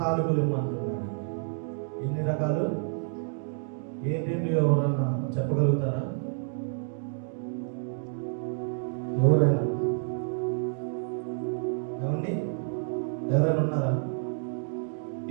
ఇవ్వమంటున్నాడు. ఎన్ని రకాలు? ఏంటండి? ఎవరన్నా చెప్పగలుగుతారా? ఎవరైనా ఏమండి? ఎవరైనా ఉన్నారా?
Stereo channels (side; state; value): left; silent; digital silence